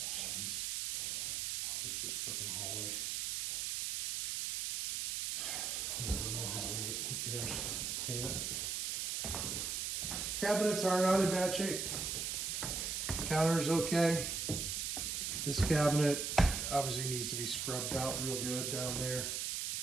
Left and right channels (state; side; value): noise; right; hiss, 1 dB below the sound